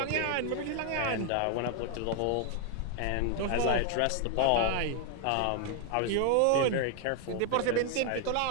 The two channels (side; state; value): both; different; correlation 0.00